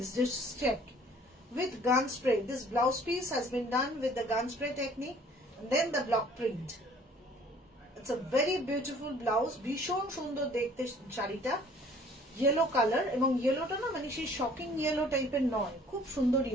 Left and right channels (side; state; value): both; normal; correlation 0.54